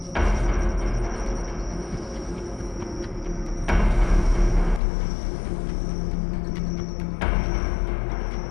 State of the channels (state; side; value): drops out; right; at 4.8 s